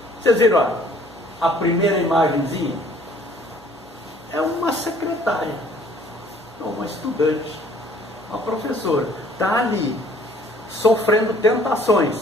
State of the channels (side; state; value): both; normal; correlation 0.57